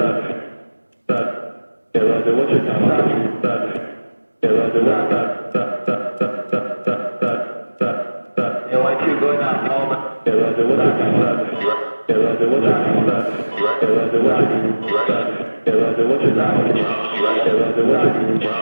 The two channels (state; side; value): inverted; both; correlation -1.00